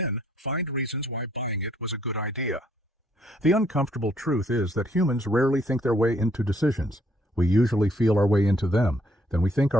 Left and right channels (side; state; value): both; normal; correlation 0.67